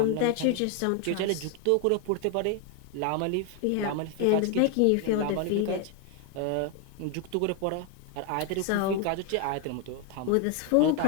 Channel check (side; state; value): both; different; correlation 0.01